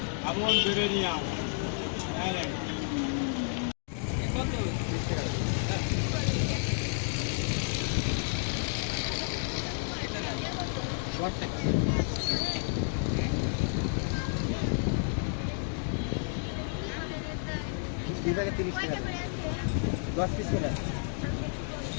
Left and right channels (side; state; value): right; silent; 57 dB below the other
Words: এমন বেড়ে নিয়ে বিভাগে 30 টাকা 10 পিস করে